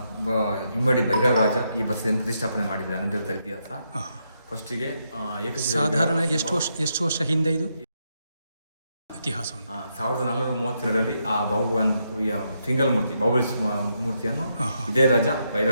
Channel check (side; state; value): both; inverted; correlation -0.80